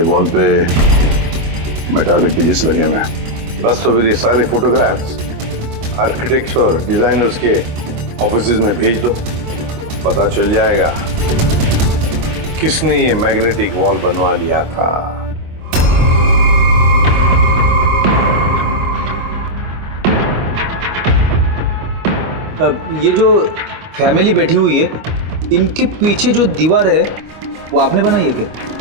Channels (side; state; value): left; late; 25 ms